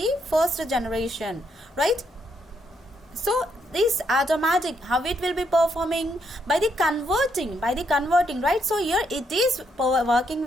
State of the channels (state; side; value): normal; both; correlation 0.76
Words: first generation, right? So this automatic, how it will be performing? By the converting, right? So here it is working